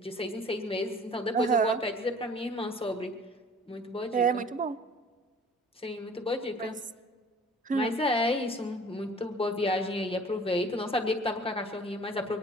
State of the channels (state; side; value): normal; both; correlation 0.49